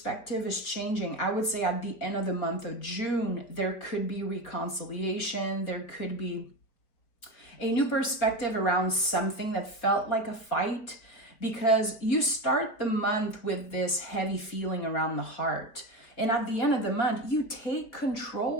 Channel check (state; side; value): late; right; 4.2 ms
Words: is changing. I would say at the end of the month of June, there could be reconciliation. There could be a new perspective around something that felt like a fight, because you start the month with this heavy feeling around the heart. And at the end of the month, you take